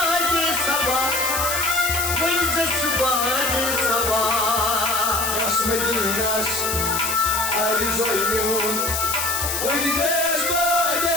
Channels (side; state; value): left; noise; hiss, 1 dB below the sound